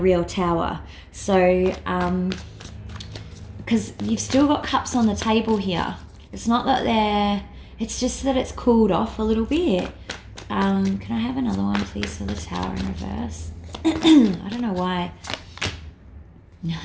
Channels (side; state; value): both; identical; correlation 1.00